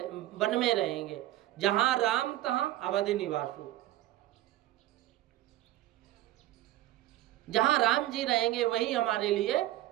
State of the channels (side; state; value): left; quieter; 15.0 dB